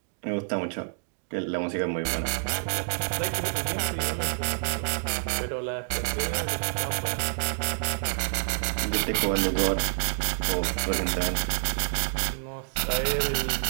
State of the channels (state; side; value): silent; left; digital silence